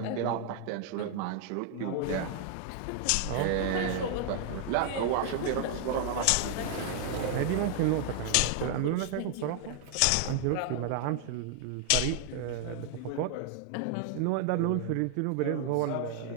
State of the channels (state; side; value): different; both; correlation 0.00